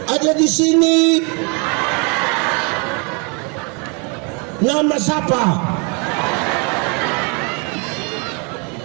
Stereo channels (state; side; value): quieter; left; 34.1 dB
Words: Ada di sini. Nama siapa?